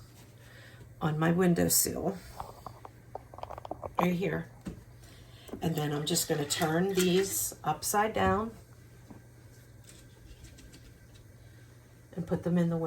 on my windowsill. right here. And then I'm just going to turn these upside down and put them in the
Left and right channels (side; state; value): both; identical; correlation 1.00